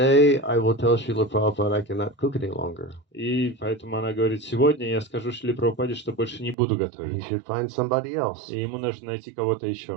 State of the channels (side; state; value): left; drops out; at 6.6 s